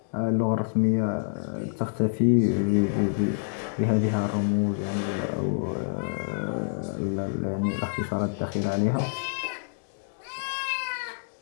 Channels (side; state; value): right; silent; digital silence